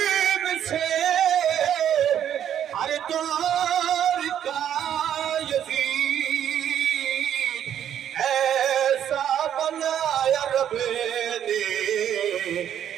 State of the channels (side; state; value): left; quieter; 9.9 dB